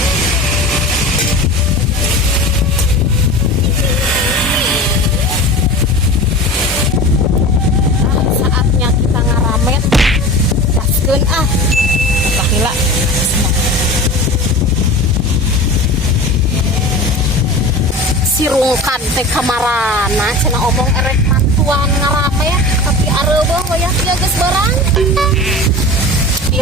Sirungkan teh kamarana cenah omong erek mantuan ngarame tapi areueuh wayah dia geus barang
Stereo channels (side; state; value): both; normal; correlation 0.33